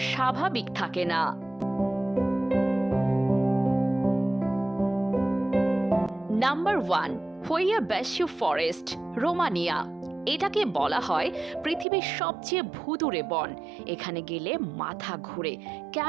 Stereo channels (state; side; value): drops out; left; at 11.9 s